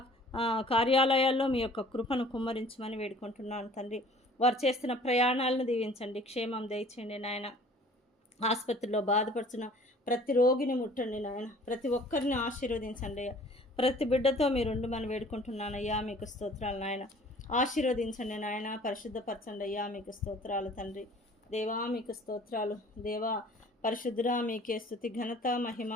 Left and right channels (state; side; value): normal; both; correlation 0.51